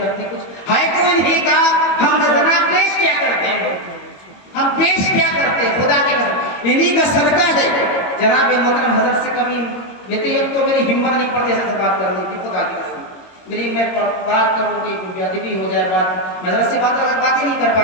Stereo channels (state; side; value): late; right; 22 ms